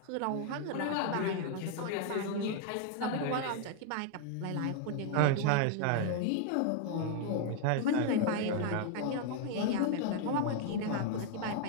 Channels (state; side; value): different; both; correlation 0.00